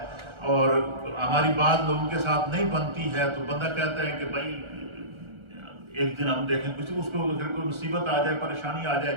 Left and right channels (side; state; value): left; late; 1.4 ms